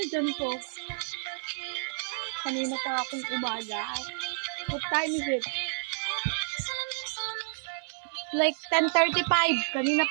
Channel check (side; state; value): left; silent; 58 dB below the other